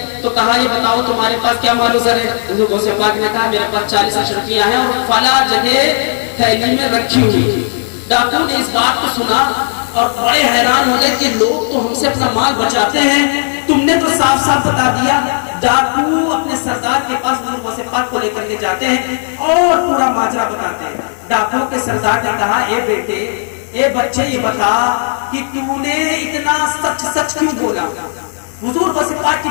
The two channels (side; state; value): right; silent; 59 dB below the other